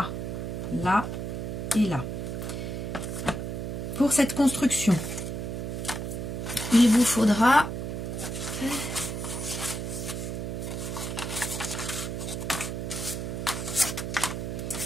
et là. Pour cette construction, il vous faudra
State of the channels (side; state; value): right; noise; hum, 4 dB below the sound